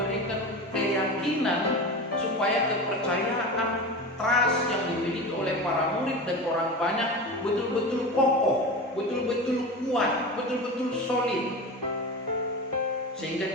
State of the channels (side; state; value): both; normal; correlation 0.28